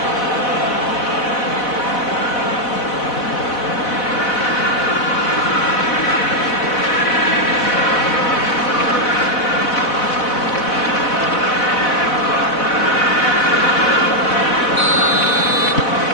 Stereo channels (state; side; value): late; right; 4.1 ms